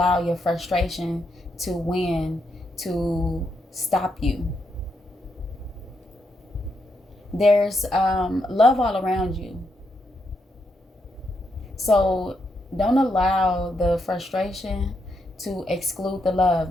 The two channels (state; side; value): normal; both; correlation 0.80